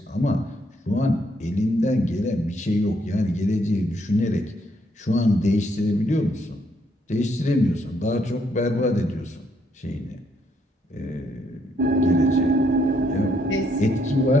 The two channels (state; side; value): normal; both; correlation 0.72